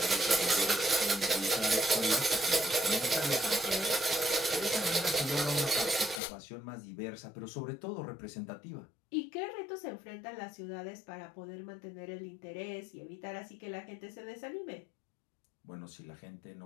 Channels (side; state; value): right; drops out; at 6.2 s